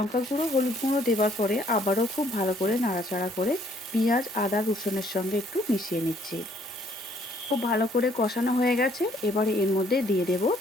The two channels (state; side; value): normal; both; correlation 0.64